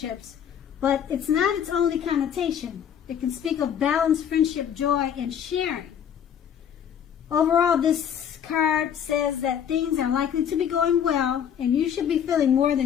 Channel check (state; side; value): quieter; right; 8.7 dB